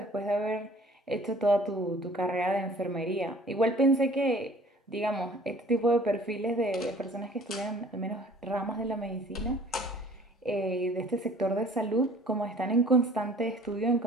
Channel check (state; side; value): normal; both; correlation 0.52